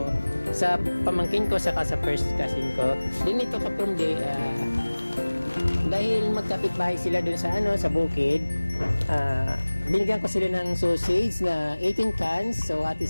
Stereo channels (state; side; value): inverted; both; correlation -1.00